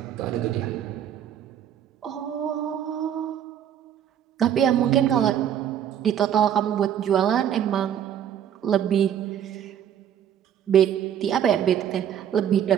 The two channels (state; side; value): quieter; left; 9.7 dB